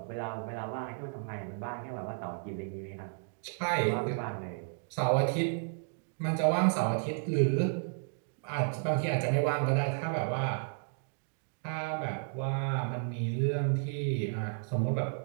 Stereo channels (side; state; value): left; silent; 56 dB below the other